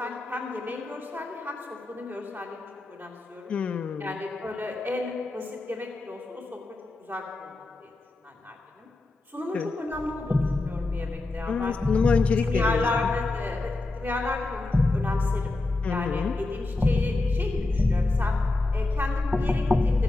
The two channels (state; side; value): quieter; right; 3.0 dB